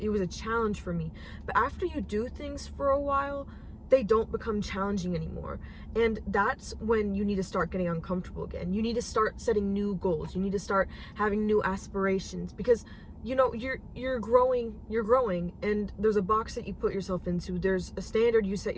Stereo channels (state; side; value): identical; both; correlation 1.00